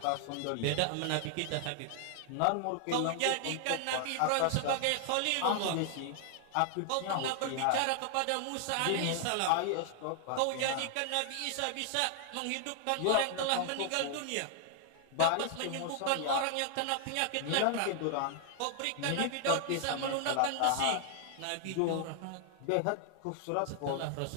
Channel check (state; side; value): different; both; correlation 0.00